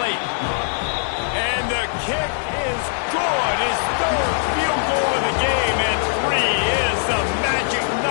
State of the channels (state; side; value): silent; right; 65 dB below the other